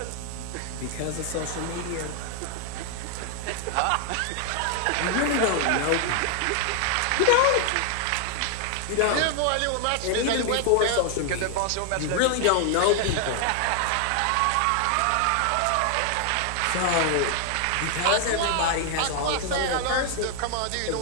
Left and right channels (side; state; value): both; different; correlation 0.00